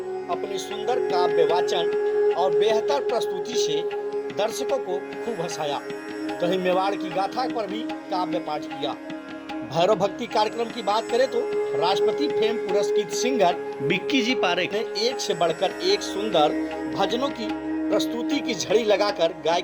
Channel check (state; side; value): identical; both; correlation 1.00